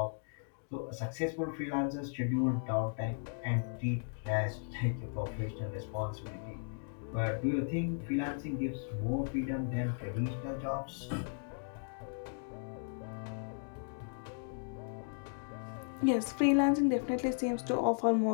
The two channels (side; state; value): right; silent; digital silence